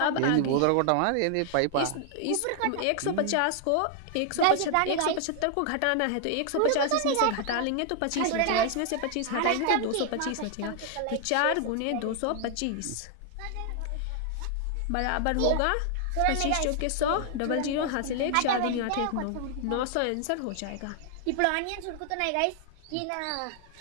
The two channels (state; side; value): different; both; correlation 0.00